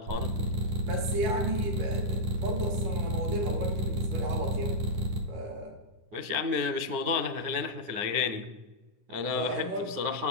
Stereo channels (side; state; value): left; late; 9.6 ms